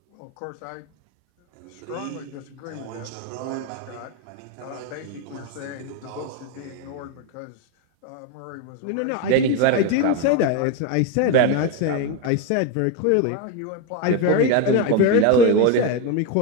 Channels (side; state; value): both; different; correlation 0.03